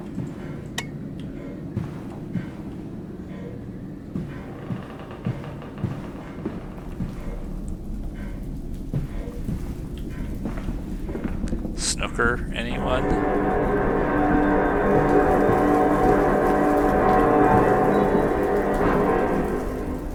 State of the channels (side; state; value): both; identical; correlation 1.00